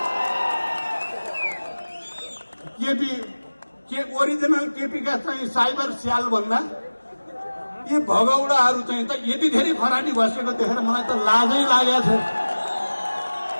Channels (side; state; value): both; inverted; correlation -1.00